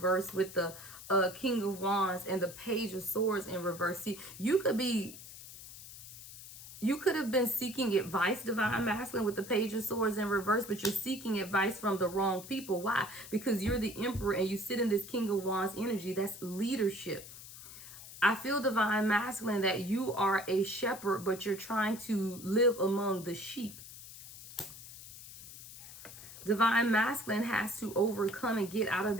with the King of Wands and the Page of Swords in reverse. See, you could have been seeking advice, divine masculine, with the Page of Swords in reverse, but you're seeking advice from the wrong people. Why? Because you're the Emperor and you sit in this King of Wands energy. That's leadership. I feel, divine masculine, that you are a shepherd, but you're trying to live among the sheep. Divine masculine has to overcome and get out of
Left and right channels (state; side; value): noise; left; hiss, 15 dB below the sound